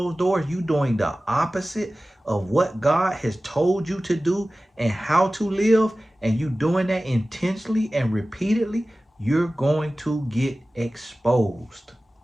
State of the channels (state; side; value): normal; both; correlation 0.96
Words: doors, you doing the opposite of what God has told you to do and how to live, and you doing that intentionally and repeatedly, you're going to get exposed.